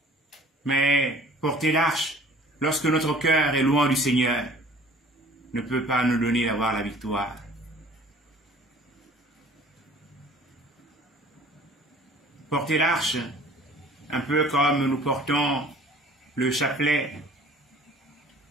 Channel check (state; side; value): normal; both; correlation 0.50